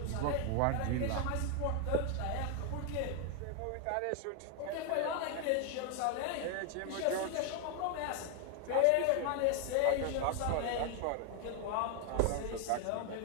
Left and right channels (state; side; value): different; both; correlation 0.00